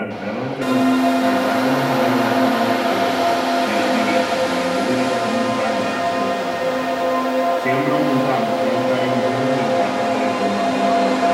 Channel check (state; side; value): identical; both; correlation 1.00